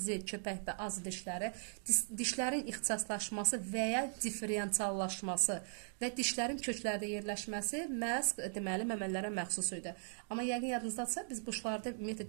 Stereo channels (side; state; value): left; silent; digital silence